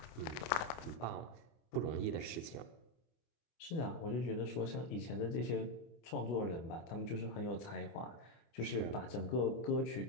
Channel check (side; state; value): right; late; 24 ms